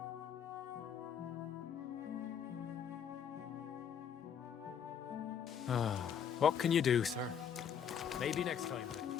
What can you do, sir? Maybe next time.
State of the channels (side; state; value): right; quieter; 8.0 dB